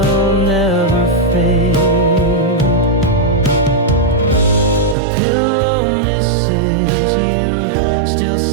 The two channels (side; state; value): left; drops out; at 5.0 s